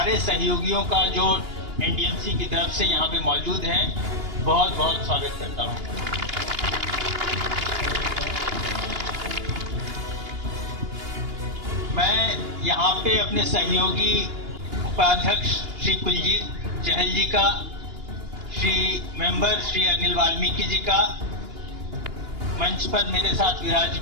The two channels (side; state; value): left; late; 2.8 ms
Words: सहयोगियों का जो एनडीएमसी की तरफ से यहाँ पे मौजूद हैं बहुत बहुत स्वागत करता हूँ। मैं यहाँ पे अपने सहयोगी उपाध्यक्ष श्री कुलजीत चहल जी का, श्री मेंबर श्री अनिल वाल्मीकि जी का, मंच पर मेरे साथ